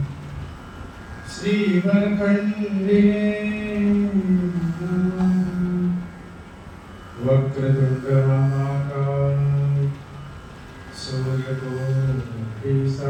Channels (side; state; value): both; identical; correlation 1.00